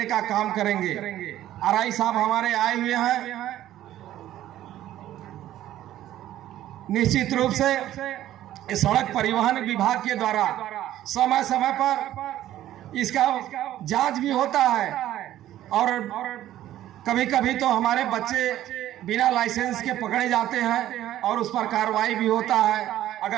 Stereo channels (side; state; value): left; quieter; 13.1 dB